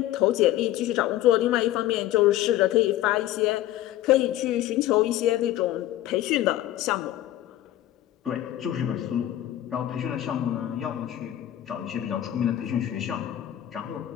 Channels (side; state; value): right; quieter; 13.5 dB